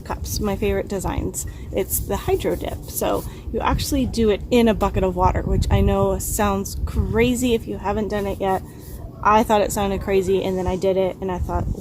cups, my favorite designs. It's the hydro dip. So you actually do it in a bucket of water, which I know sounds crazy if you haven't done it yet. I thought it sounded crazy, and then I did it and I thought,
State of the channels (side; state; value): both; identical; correlation 1.00